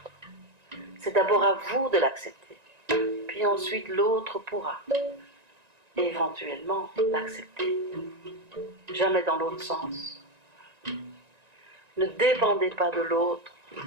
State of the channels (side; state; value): left; late; 1.9 ms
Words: C'est d'abord à vous de l'accepter, puis ensuite l'autre pourra éventuellement l'accepter. Jamais dans l'autre sens. Ne dépendez pas de l'autre,